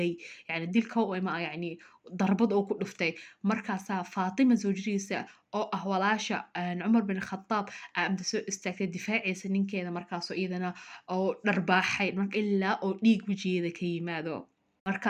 yani dilka oo ma yani darbad oo ku dhuftay markaas Faatima zawjadiisa oo ah walaasha Umar bin Khattab amda soo istaagtay difaacaysa ninkeeda markaas iyadana oo dharbaaxay marka ilaa oo dhiig wajigeeda ka yimaado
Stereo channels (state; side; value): identical; both; correlation 1.00